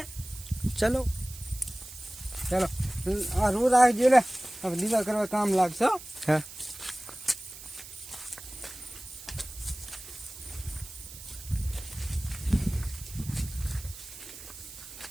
ચલો ચલો આ રૂ રાખજો લે હવે દીવા કરવા કામ લાગશે હો. હા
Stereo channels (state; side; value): noise; right; hiss, 14 dB below the sound